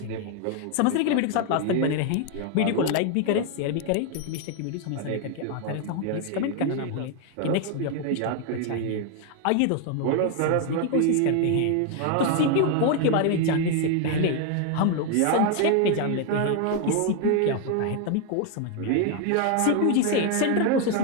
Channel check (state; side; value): different; both; correlation 0.01